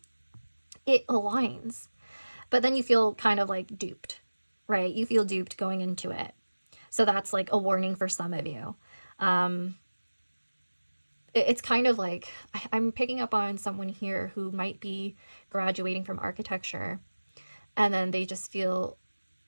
it aligns. But then you feel kind of like duped, right? You feel duped going into it. So that's like a warning for some of you. It's kind of like, I'm picking up on someone here who might be graduating from architecture, and then they just feel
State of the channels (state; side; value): inverted; both; correlation -1.00